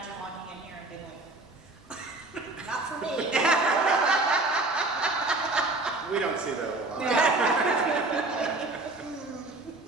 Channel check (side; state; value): left; quieter; 3.0 dB